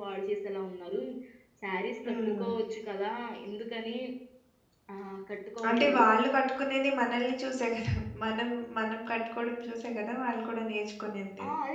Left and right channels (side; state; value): both; identical; correlation 1.00